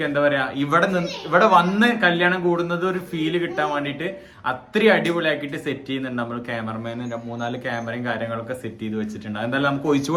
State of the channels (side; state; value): both; identical; correlation 1.00